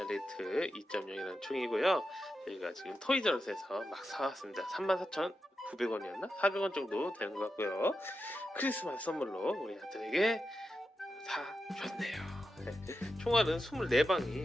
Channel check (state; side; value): normal; both; correlation 0.89